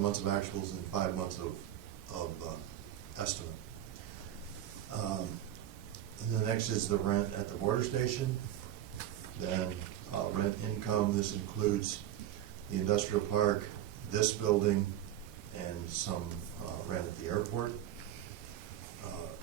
of actuals and 5 months of estimate. And the next is the rent at the border station. Then rent income, this includes the industrial park, this building, and some rent at the airport.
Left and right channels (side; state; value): left; quieter; 12.0 dB